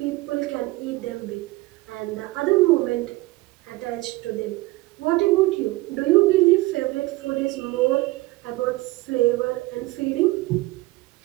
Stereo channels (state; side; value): quieter; left; 20.3 dB